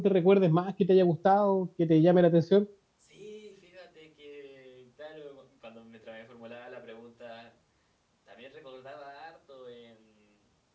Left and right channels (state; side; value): identical; both; correlation 1.00